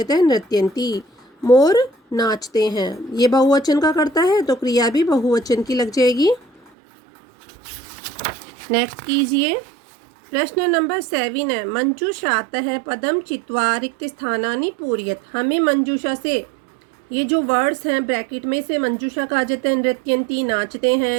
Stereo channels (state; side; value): drops out; left; at 6.7 s